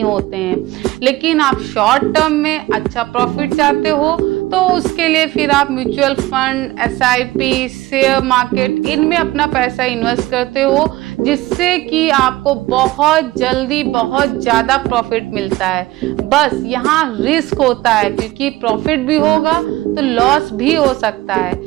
होते हैं। लेकिन आप शॉर्ट टर्म में अच्छा प्रॉफिट चाहते हो तो उसके लिए फिर आप mutual fund, SIP, share market, इनमें अपना पैसा इन्वेस्ट करते हो, जिससे कि आपको बहुत जल्दी बहुत ज्यादा प्रॉफिट मिलता है। बस यहाँ रिस्क होता है, क्योंकि प्रॉफिट भी होगा तो लॉस भी हो सकता है।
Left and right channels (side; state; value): left; quieter; 17.8 dB